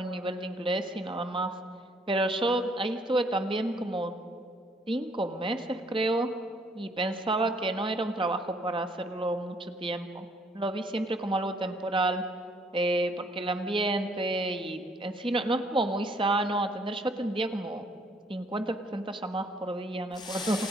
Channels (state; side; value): normal; both; correlation 0.64